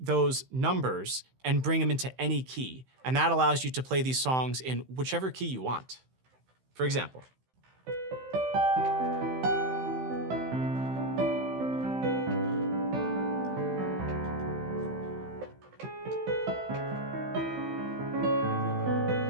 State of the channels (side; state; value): left; late; 15 ms